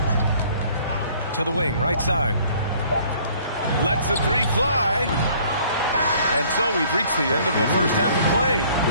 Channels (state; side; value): inverted; both; correlation -0.57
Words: To the wing, right side. Lets the 3 fly. And so we've reached the end of the first half of play.